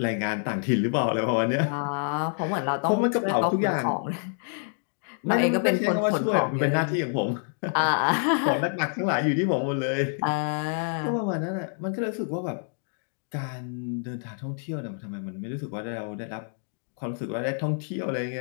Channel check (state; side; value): silent; right; 60 dB below the other